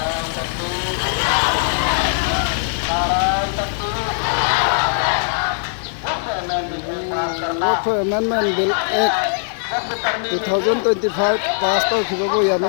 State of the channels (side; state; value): right; silent; digital silence